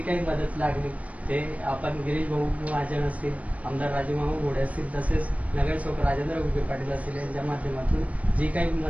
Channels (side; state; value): left; late; 0.068 ms